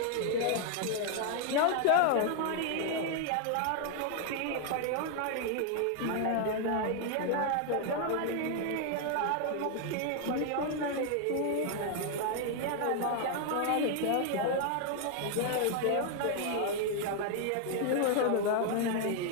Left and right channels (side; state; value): both; different; correlation 0.00